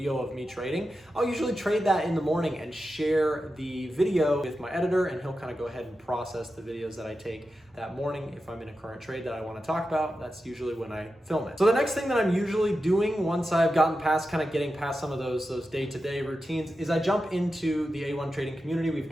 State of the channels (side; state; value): both; normal; correlation 0.91